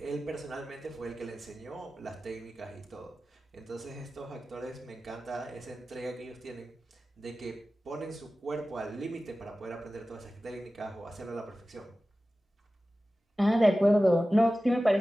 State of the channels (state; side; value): normal; both; correlation 0.95